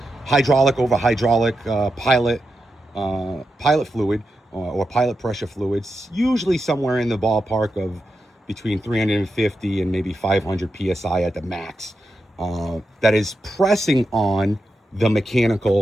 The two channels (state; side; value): normal; both; correlation 0.88